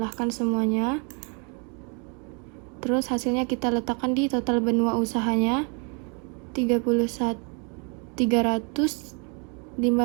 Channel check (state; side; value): quieter; left; 36.0 dB